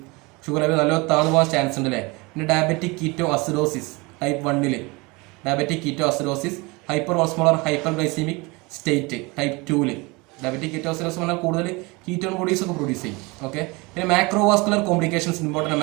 ഷുഗർ ലെവൽ നല്ല താഴ്ന്നു പോകാൻ ചാൻസ് ഉണ്ട് അല്ലേ. പിന്നെ diabetic keto acidosis type 1, diabetic keto acidosis, hyper osmolar hyperglycemic state type 2. Diabetic ketoacidosis പറഞ്ഞാൽ കൂടുതൽ കീറ്റോൺ ബോഡീസ് ഒക്കെ പ്രൊഡ്യൂസ് ചെയ്യും. ഓക്കെ, പിന്നെ macrovascular complications important.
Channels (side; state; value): left; quieter; 25.6 dB